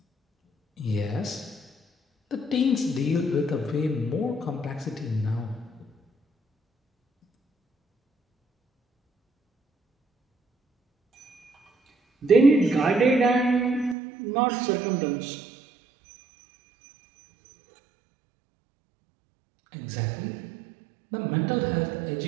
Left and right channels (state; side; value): drops out; left; at 14.0 s